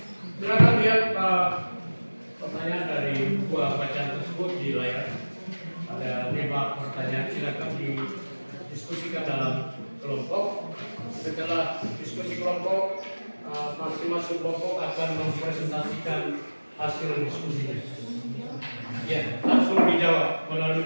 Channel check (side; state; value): both; inverted; correlation -1.00